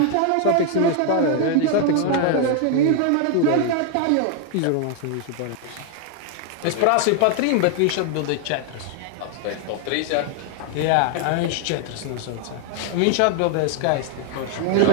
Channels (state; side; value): different; both; correlation 0.01